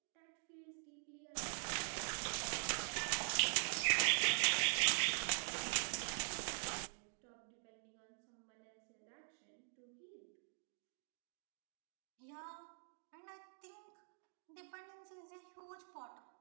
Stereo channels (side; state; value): left; silent; digital silence